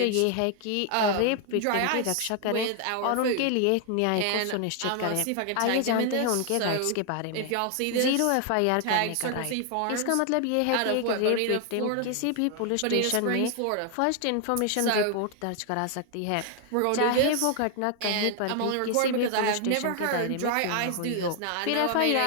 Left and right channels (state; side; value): different; both; correlation 0.00